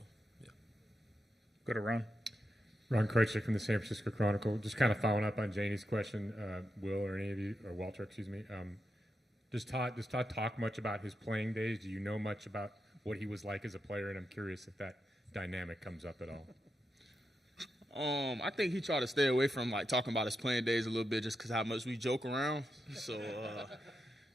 yeah. Go to Ron. Ron Kreutzler from the San Francisco Chronicle. Just kind of following up on Janie's question, Will or any of you, or Walter, excuse me. Does Todd talk much about his playing days? Do you know much about what he was like as a player? And I'm curious if that dynamic comes up at all. I think he tried to stay away from like talking about his playing days a little bit, just because how much we joke around. So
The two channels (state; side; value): normal; both; correlation 0.86